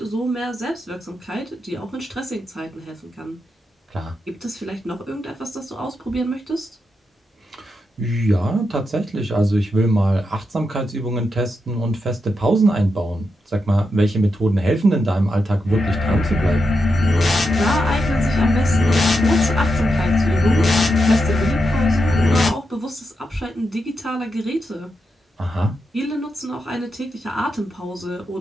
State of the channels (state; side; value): normal; both; correlation 0.86